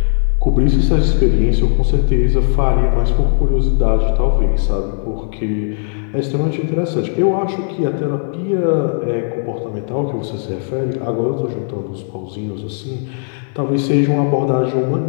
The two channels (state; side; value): silent; right; 64 dB below the other